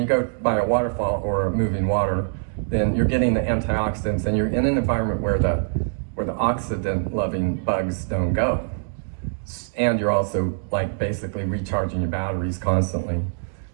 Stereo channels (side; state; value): left; silent; digital silence